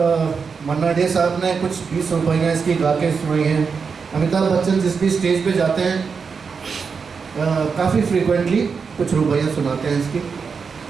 मन्ना डे साहब ने कुछ 20 रुपये इसकी गा के सुनाई हैं। अमिताभ बच्चन जिस भी स्टेज पे जाते हैं काफ़ी फ्रीक्वेंटली कुछ रुपये सुनाते हैं इसकी।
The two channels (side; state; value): left; quieter; 5.5 dB